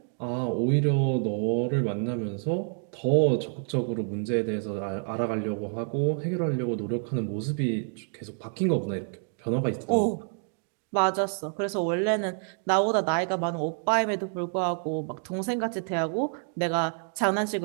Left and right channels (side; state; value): left; silent; 56 dB below the other